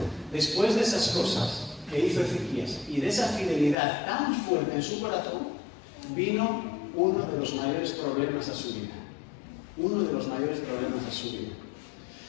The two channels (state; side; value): drops out; right; at 3.8 s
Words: Después de esas cosas que hizo Ezequías y de esa fidelidad tan fuerte en su corazón, vino uno de los mayores problemas a su vida. Uno de los mayores problemas a su vida.